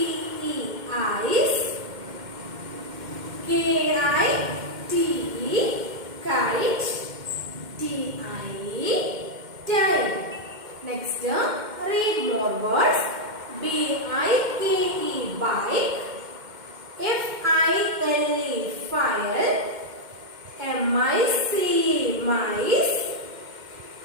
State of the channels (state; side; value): late; left; 2.1 ms